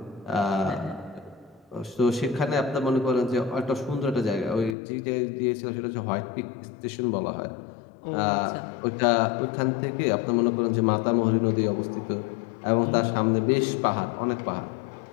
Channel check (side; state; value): right; drops out; at 4.8 s